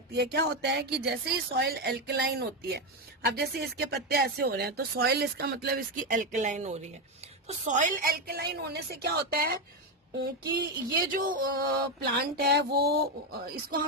है। क्या होता है कि जैसे ही सॉइल एल्कलाइन होती है, अब जैसे इसके पत्ते ऐसे हो रहे हैं तो सॉइल, इसका मतलब इसकी एल्कलाइन हो रही है। तो सॉइल एल्कलाइन होने से क्या होता है कि ये जो प्लांट है वो इसको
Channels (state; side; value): normal; both; correlation 0.10